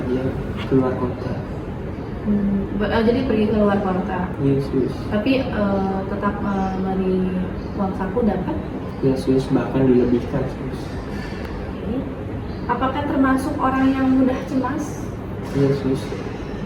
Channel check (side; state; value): both; identical; correlation 1.00